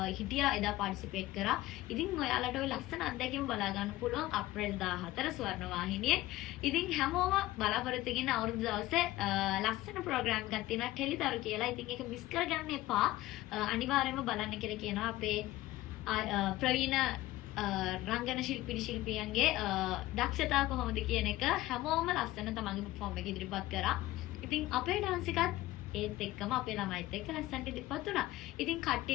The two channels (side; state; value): right; quieter; 17.1 dB